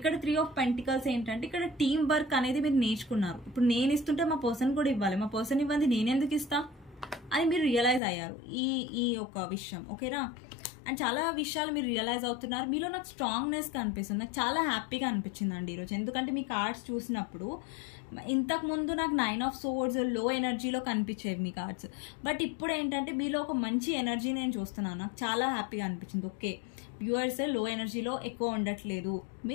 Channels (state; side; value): drops out; right; at 8.0 s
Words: 3 of Pentacles ఏంటంటే ఇక్కడ టీమ్ వర్క్ అనేది మీరు నేర్చుకున్నారు. ఇప్పుడు నేను ఇస్తుంటే మా పర్సన్ కూడా ఇవ్వాలి, మా పర్సన్ ఇవ్వండి నేనెందుకు ఇస్తా అని మీరు రియలైజ్ అయ్యారు ఈ ఒక విషయం. ఓకేనా? అండ్ చాలా విషయాలు మీరు రియలైజ్ అవుతున్నారు. మీలో నాకు స్ట్రాంగ్నెస్ కనిపిస్తుంది. నాకు చాలా హ్యాపీగా అనిపించింది అండి ఈరోజు. ఎందుకంటే మీ కార్డ్స్ చూసినప్పుడు ఇంతకు ముందు నాకు 9 of Swords లో ఎనర్జీలో కనిపించేవి మీ కార్డ్స్, బట్ ఇప్పుడు ఏంటంటే మీలో ఒక మంచి ఎనర్జీ నేను చూస్తున్నాను. నాకు చాలా హ్యాపీగా అనిపించింది. ఓకే, వ్యూవర్స్ లో ఎనర్జీలో ఎక్కువ ఉండట్లేదు.